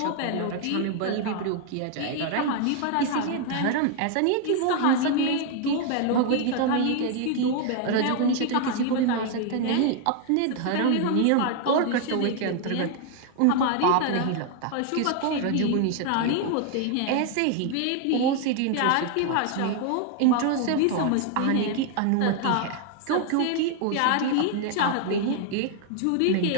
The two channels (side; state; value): both; different; correlation 0.00